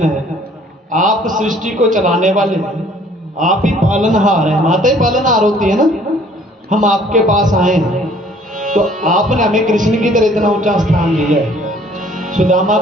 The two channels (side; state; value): both; normal; correlation 0.57